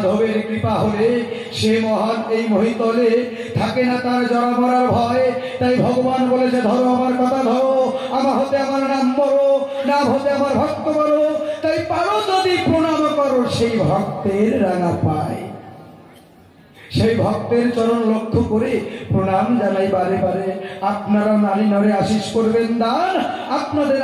কৃপা হলে সে মহান এই মহিতলে থাকে না তার জরা মরার ভয়। তাই ভগবান বলেছে, ধরো আমার কথা ধরো, আমার হতে আমার নাম বড়, নাম হতে আমার ভক্ত বড়। তাই পারো যদি প্রণাম করো সেই ভক্তের রাঙা পায়। সেই ভক্তের চরণ লক্ষ্য করে প্রণাম জানাই বারে বারে। আপনারা নারী নরে আশিস করবেন দান, আপনাদের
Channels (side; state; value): both; identical; correlation 1.00